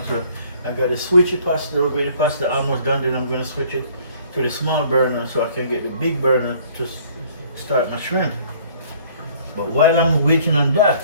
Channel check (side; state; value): both; inverted; correlation -0.57